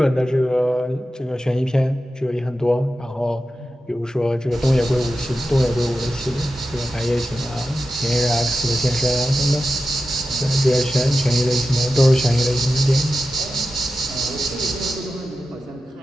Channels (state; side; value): normal; both; correlation 0.91